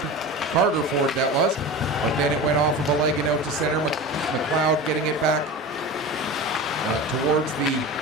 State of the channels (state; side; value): normal; both; correlation 0.30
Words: Carter Ford that was, but then it went off of a leg and out to center. McLeod getting it back towards the